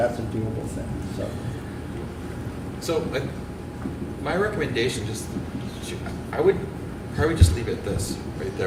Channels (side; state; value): both; identical; correlation 1.00